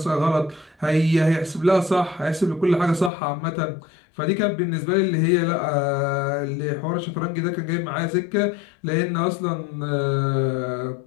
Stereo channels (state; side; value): drops out; right; at 3.1 s